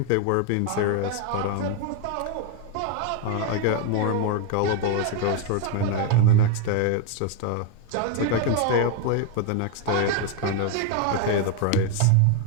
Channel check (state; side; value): different; both; correlation 0.01